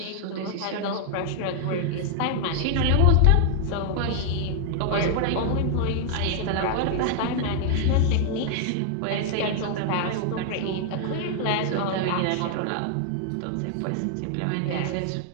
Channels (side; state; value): both; different; correlation 0.00